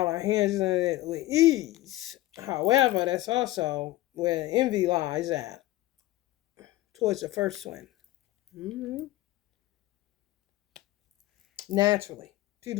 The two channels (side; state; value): right; quieter; 17.0 dB